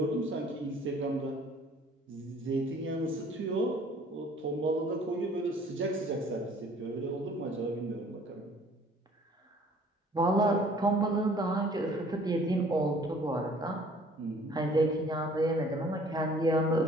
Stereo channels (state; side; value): normal; both; correlation 0.55